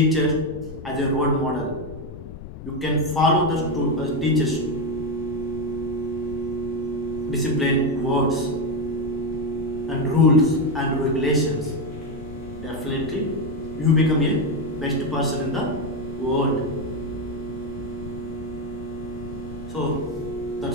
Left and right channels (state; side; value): noise; left; rumble, 12 dB below the sound